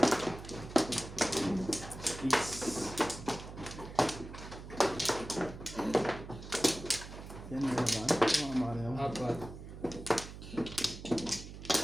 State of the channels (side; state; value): right; noise; hum, 12 dB below the sound